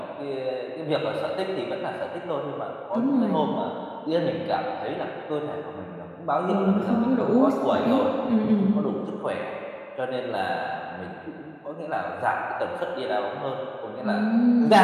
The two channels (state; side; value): identical; both; correlation 1.00